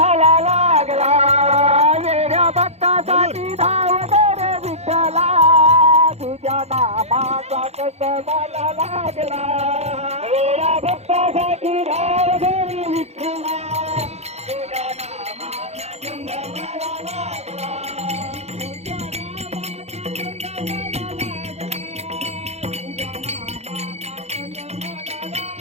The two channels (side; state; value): left; late; 0.31 ms